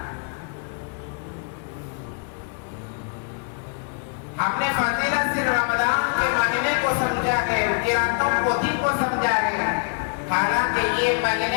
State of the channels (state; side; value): quieter; right; 39.0 dB